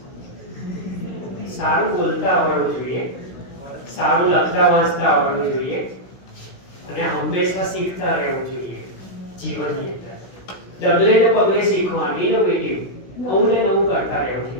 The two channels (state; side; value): late; right; 16 ms